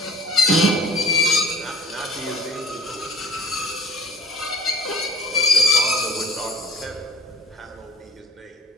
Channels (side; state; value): both; normal; correlation 0.50